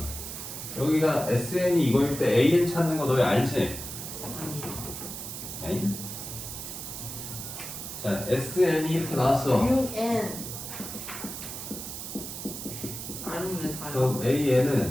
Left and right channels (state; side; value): noise; right; hiss, 8 dB below the sound